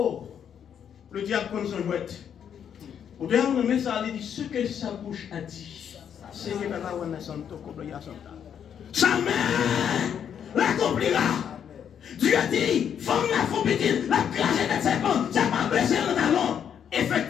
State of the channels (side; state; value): right; quieter; 8.5 dB